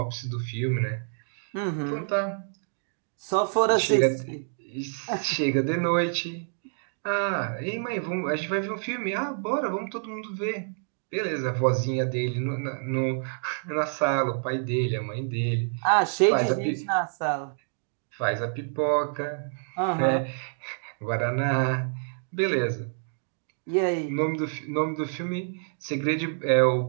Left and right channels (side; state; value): left; silent; digital silence